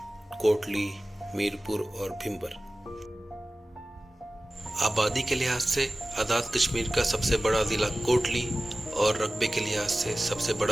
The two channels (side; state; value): both; normal; correlation 0.96